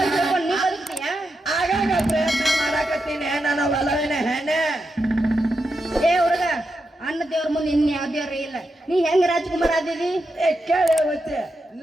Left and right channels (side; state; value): both; normal; correlation 0.86